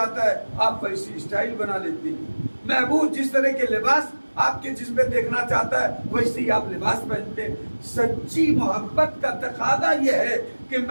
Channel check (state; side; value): inverted; both; correlation -1.00